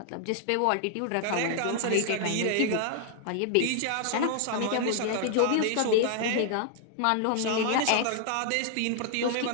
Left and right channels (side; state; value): both; different; correlation 0.00